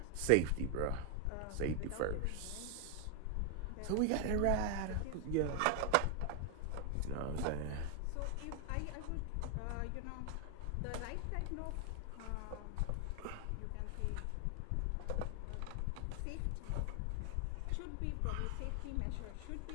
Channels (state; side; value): different; both; correlation 0.00